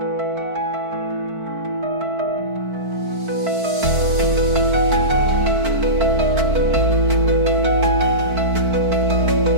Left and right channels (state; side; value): late; left; 4.5 ms